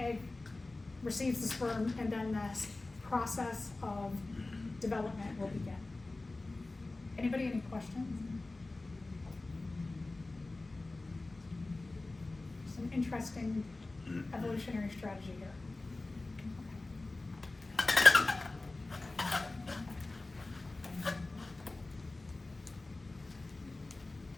receives the sperm, and then the process of development will begin. Anybody, any questions? Some interesting evolutionary strategy here.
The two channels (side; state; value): right; quieter; 3.1 dB